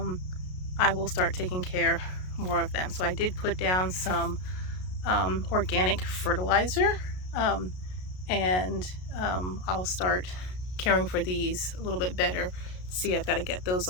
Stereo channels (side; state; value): right; late; 33 ms